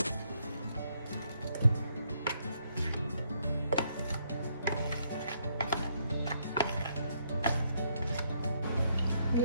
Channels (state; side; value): inverted; both; correlation -0.73